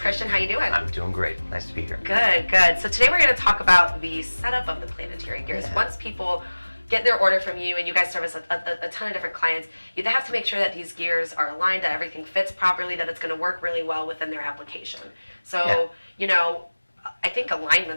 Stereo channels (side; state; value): both; inverted; correlation -1.00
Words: How you doing? I'm doing great. Nice to be here. Good, good. So today we're going to talk about the setup of the Planetary Gears. Yeah. Once people get their order from you and you guys service a ton of different clients, you have to make sure that these gears are aligned, that everything fits properly, that it's going to work really well within their application. So, you know, I think